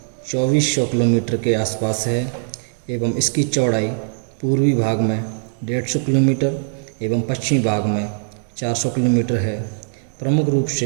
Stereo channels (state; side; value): silent; left; digital silence